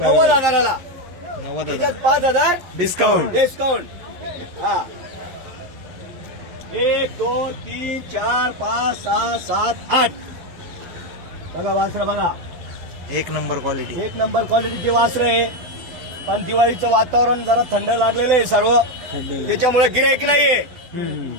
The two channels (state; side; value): late; left; 12 ms